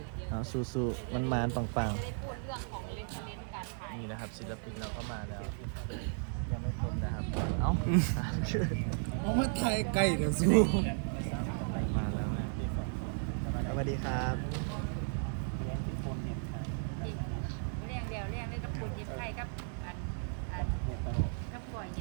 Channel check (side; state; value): left; silent; 54 dB below the other